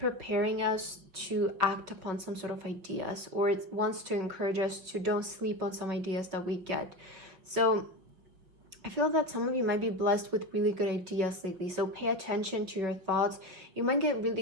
us to act upon some sort of ideas, or it wants to encourage us to don't sleep on some ideas that we get. So I feel that some of you might be blessed with really good ideas lately. So pay attention to your thoughts. You might get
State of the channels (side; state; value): left; late; 5.4 ms